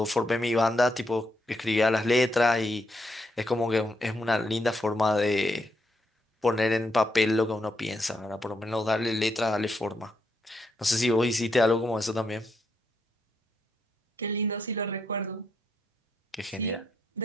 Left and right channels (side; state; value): both; normal; correlation 0.79